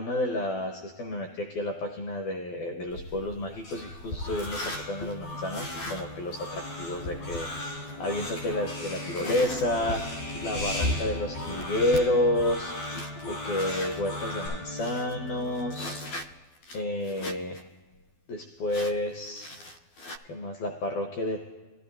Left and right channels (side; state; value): right; late; 12 ms